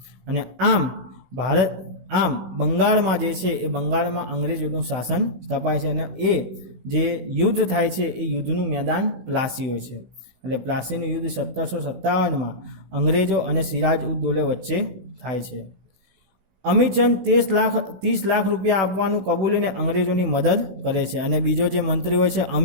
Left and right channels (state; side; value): late; left; 16 ms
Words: અને આમ બંગાળમાં જે છે એ બંગાળમાં અંગ્રેજોનું શાસન સ્થપાય છે. અને એ જે યુદ્ધ થાય છે એ યુદ્ધનું મેદાન પ્લાસી હોય છે. એટલે પ્લાસીનું યુદ્ધ 1757માં અંગ્રેજો અને સિરાજ ઉદ દૌલે વચ્ચે થાય છે. અમીચંદ 30 લાખ રૂપિયા આપવાનું કબૂલીને અંગ્રેજોની મદદ કરે છે. અને બીજો જે મંત્રી હોય છે